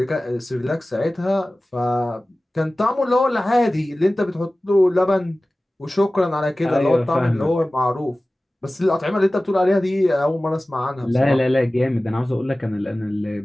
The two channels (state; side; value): normal; both; correlation 0.97